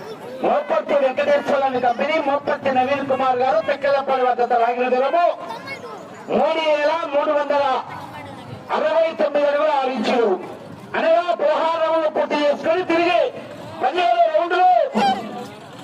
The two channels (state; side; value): identical; both; correlation 1.00